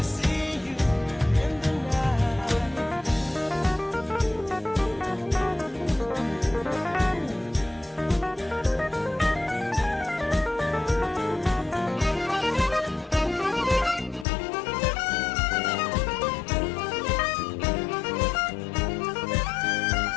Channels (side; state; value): right; drops out; at 14.2 s